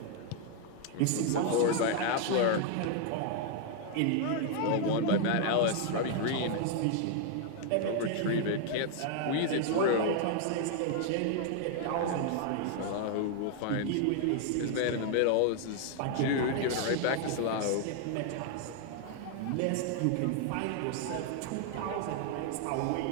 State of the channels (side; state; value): both; different; correlation 0.00